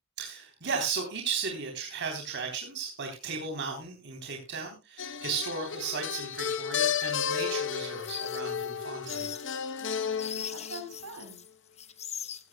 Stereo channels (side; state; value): both; normal; correlation -0.10